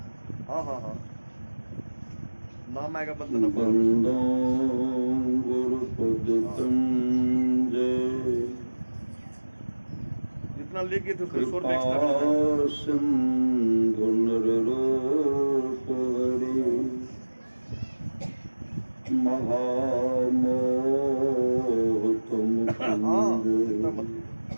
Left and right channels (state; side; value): inverted; both; correlation -1.00